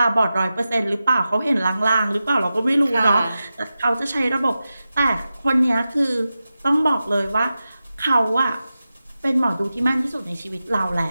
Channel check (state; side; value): inverted; both; correlation -0.93